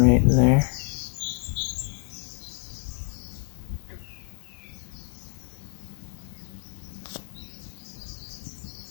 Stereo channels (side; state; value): right; quieter; 38.4 dB